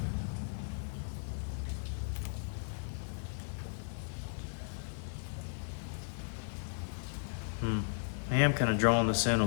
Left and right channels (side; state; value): right; silent; 54 dB below the other